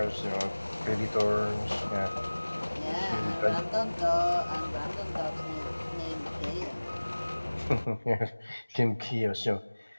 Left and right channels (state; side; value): inverted; both; correlation -1.00